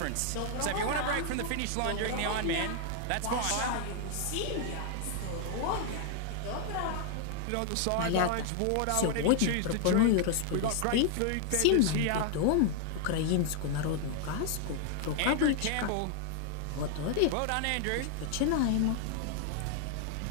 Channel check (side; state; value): both; different; correlation 0.00